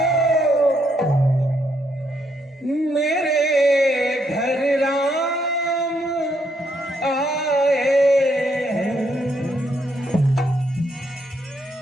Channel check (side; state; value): both; normal; correlation 0.74